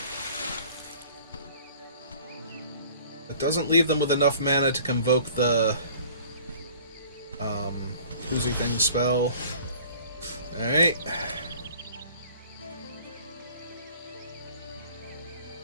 It doesn't leave them with enough mana to convoke the Oozy Thing spell. Alright.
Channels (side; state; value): both; inverted; correlation -0.50